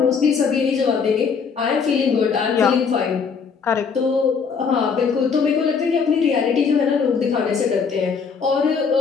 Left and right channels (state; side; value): quieter; right; 5.8 dB